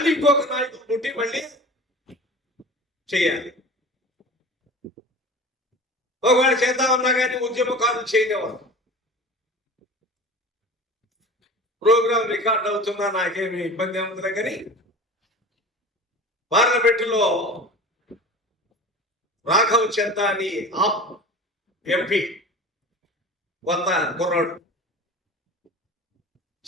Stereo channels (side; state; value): both; normal; correlation 0.37